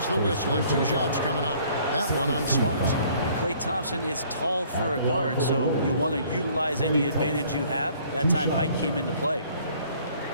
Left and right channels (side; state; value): both; inverted; correlation -0.58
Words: the whistle and 2 shots coming up. That one on Smart. Klay Thompson is tall for a guard, so you want to utilize any advantage you have. That time height came into play.